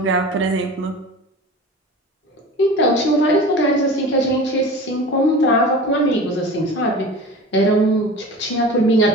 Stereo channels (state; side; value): normal; both; correlation 0.36